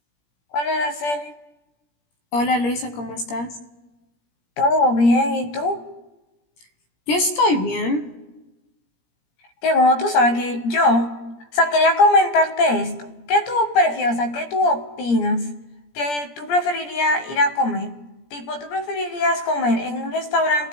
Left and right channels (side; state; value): right; late; 17 ms